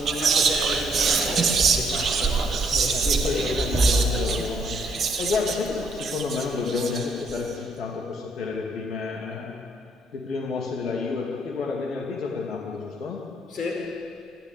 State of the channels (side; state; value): both; normal; correlation 0.69